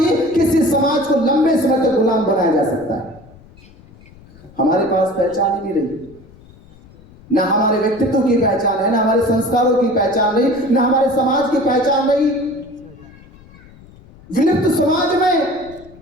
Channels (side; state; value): left; noise; rumble, 24 dB below the sound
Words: किसी समाज को लंबे समय तक गुलाम बनाया जा सकता है। हमारे पास पहचान ही नहीं रही, ना हमारे व्यक्तित्व की पहचान है, ना हमारे संस्कारों की पहचान रही, ना हमारे समाज की पहचान रही। विलुप्त समाज में